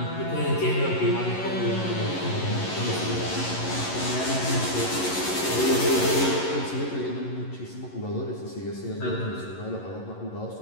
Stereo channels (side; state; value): right; late; 11 ms